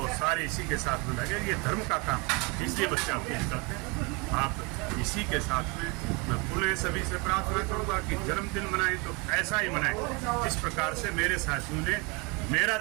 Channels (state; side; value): quieter; left; 29.2 dB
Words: सारे इसी के साथ में लगे, ये धर्म का काम, इसलिए बच्चे आपको निकलते हैं। आप इसी के साथ में मैं पुनः सभी से प्रार्थना करूँगा कि जन्मदिन मनाएं तो ऐसा ही मनाएं जिस प्रकार से मेरे साथियों ने मेरा